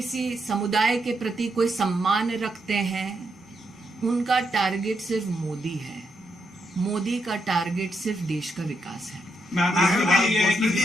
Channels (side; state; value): both; normal; correlation 0.81